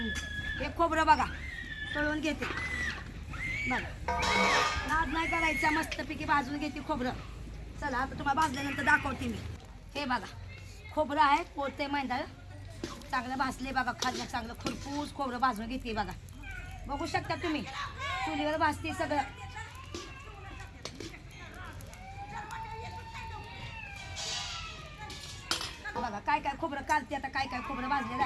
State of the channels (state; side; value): identical; both; correlation 1.00